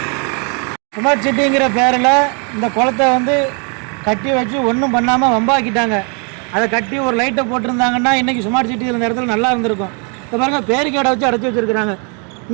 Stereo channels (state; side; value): quieter; left; 37.1 dB